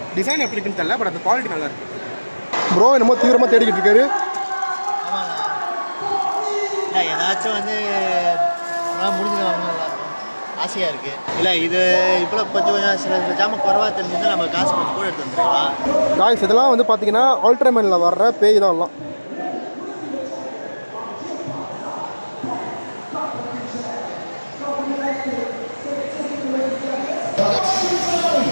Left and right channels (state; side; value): inverted; both; correlation -1.00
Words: டிசைன் எப்படி இருக்குன்னு தெரியல, பட் அந்த குவாலிட்டி நல்லா இருக்கு. ப்ரோ என்னமோ தீவிரமாக தேடிக்கிட்டு இருக்காரு. இல்லை ஏதாச்சும் வந்து முடிஞ்சது வாங்கணும் ஆசையாக இருக்குது. இல்லை இது இப்போ கொஞ்சம் சில ஜாம குறவாக தெரிஞ்சுன்னா நம்ம காசு கொஞ்சம் கூட எடுத்து வந்துருக்கலாம். காய்ஸ் இதெல்லாம் வந்து பார்த்தீங்கன்னா அல்ட்ராமேனில் வர்ற பேய் தான் எல்லாம்.